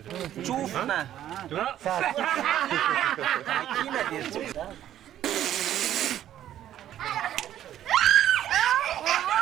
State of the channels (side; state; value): left; quieter; 11.6 dB